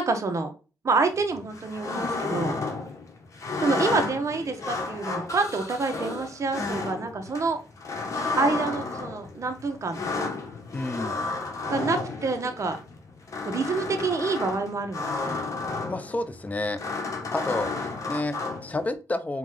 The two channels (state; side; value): normal; both; correlation 0.62